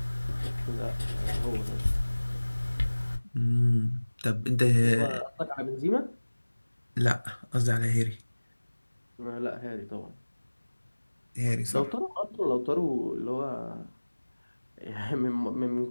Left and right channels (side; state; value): both; inverted; correlation -1.00